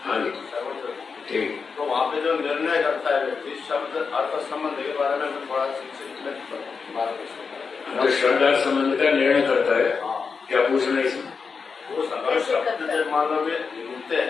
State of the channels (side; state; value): right; quieter; 5.3 dB